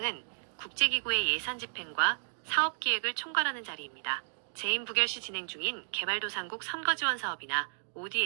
국제기구의 예산 집행과 사업 기획을 총괄하는 자리입니다. 재임 부결 시 진행 중인 개발도상국 선거지원 사업이나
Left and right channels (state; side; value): silent; left; digital silence